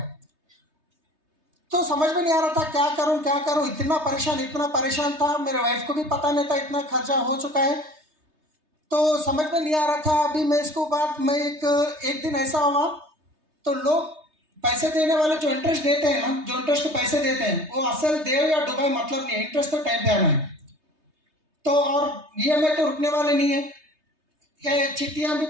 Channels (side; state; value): left; late; 3.3 ms